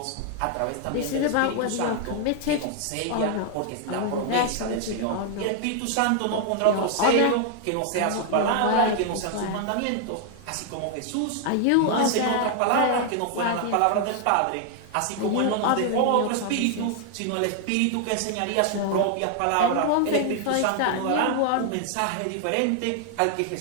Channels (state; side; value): different; both; correlation 0.00